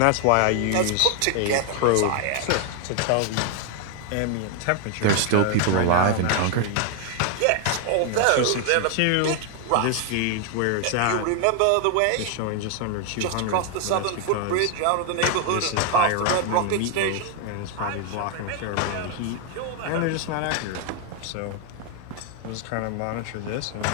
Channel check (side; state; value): both; different; correlation 0.00